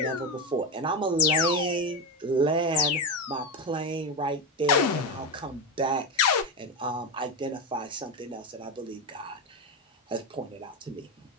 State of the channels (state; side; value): normal; both; correlation 0.14